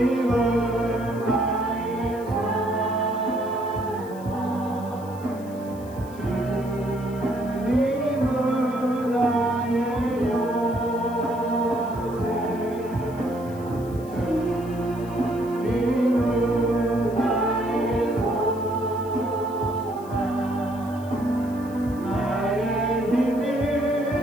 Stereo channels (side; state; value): left; noise; hiss, 23 dB below the sound